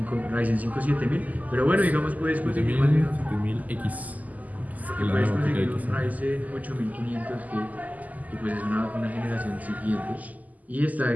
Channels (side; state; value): left; late; 0.078 ms